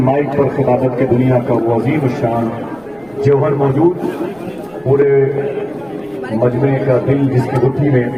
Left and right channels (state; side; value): noise; right; rumble, 29 dB below the sound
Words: مائک پر خطابت کے دنیا کا وہ عظیم الشان جوہر موجود، پورے مجمع کا دل جس کی گٹھی میں